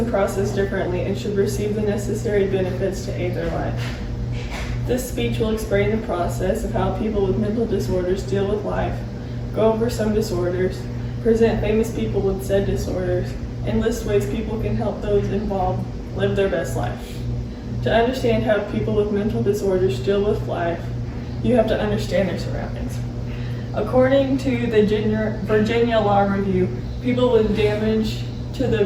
process differently and should receive the necessary benefits to aid their life. This speech will explain the process of how people with mental disorders deal with life, go over some disorders, present famous people with said disorders, and list ways people can help those involved live their best life. To understand how people with mental disorders deal with life, you have to understand their surroundings. According to the Virginia Law Review, people with damage to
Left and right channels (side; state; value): both; identical; correlation 1.00